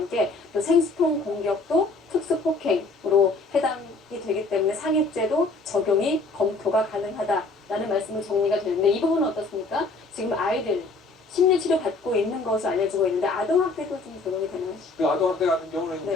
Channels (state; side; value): quieter; right; 3.5 dB